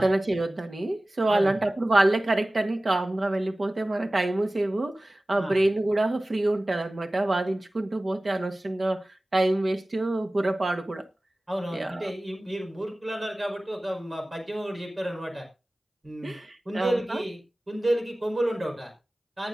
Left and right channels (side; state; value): both; normal; correlation 0.97